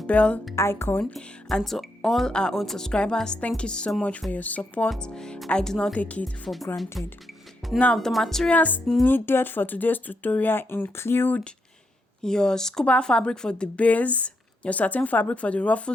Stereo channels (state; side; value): normal; both; correlation 0.80